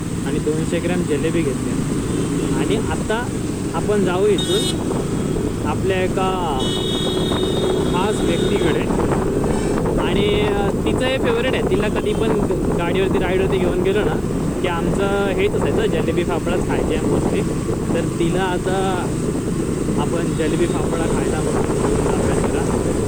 आणि 200 ग्रॅम जलेबी घेतली. आणि आता आपण जाऊ इथून आपल्या एका खास व्यक्तीकडे. आणि तिचं हे फेवरेट आहे, तिला कधी पण गाडीवरती राईडवरती घेऊन गेलो ना की आमचं हेच असायचं, जलेबी फाफडाच खायचे आहे मोस्टली. तर तिला आता आपण जलेबी फाफडा खायला म्हणून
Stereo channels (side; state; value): right; noise; hiss, 26 dB below the sound